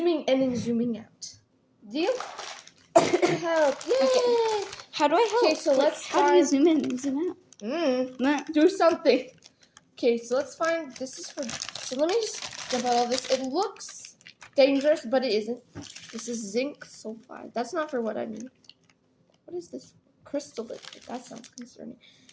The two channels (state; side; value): identical; both; correlation 1.00